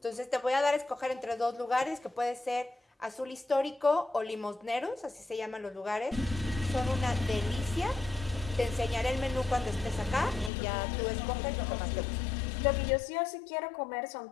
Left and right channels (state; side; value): drops out; right; at 10.5 s